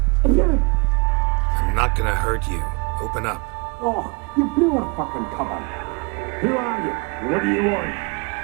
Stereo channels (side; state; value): left; quieter; 31.3 dB